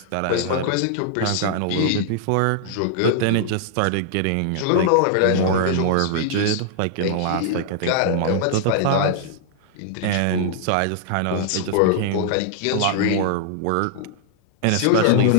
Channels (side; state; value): both; different; correlation -0.01